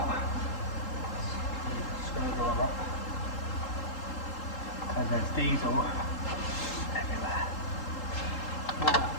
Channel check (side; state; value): right; late; 3.8 ms